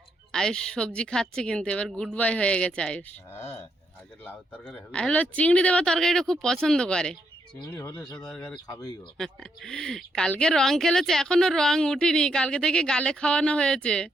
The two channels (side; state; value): both; normal; correlation 0.78